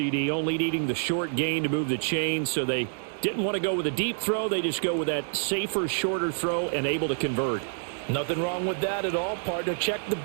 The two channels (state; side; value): silent; left; digital silence